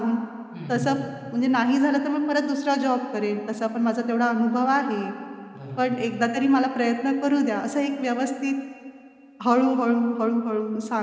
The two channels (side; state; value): both; identical; correlation 1.00